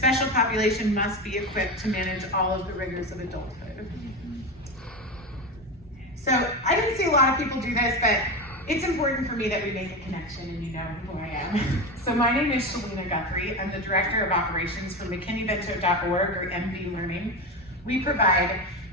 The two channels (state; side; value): normal; both; correlation 0.20